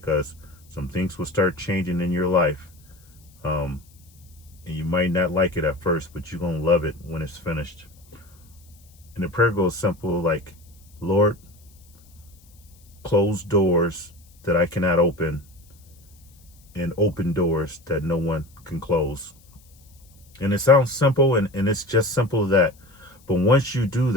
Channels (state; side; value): noise; left; hiss, 29 dB below the sound